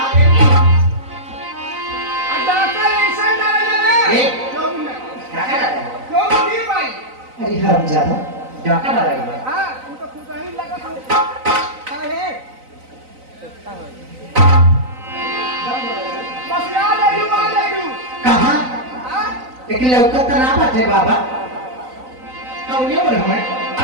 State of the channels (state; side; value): late; left; 3.9 ms